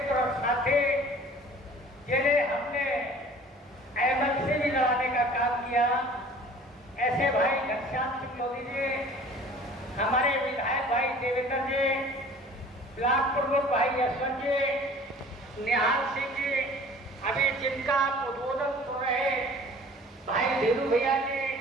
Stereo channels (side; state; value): both; normal; correlation 0.47